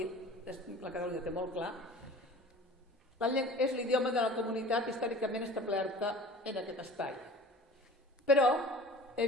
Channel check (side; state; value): both; normal; correlation 0.42